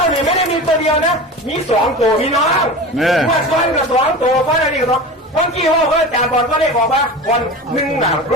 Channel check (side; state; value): both; normal; correlation 0.31